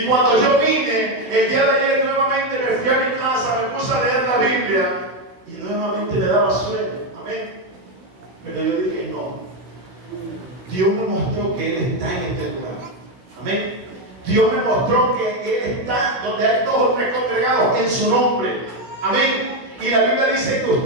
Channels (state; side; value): late; left; 16 ms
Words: cuando yo vine el día de ayer, nuevamente me fui a mi casa, me puse a leer la Biblia y nuevamente me daba sueño. Amén. Pero yo dije: no. Dios me mostró que Él está en este lugar. Amén. Dios me mostró que Él está donde hay 2 o 3 congregados en su nombre. Amén. Y la Biblia dice que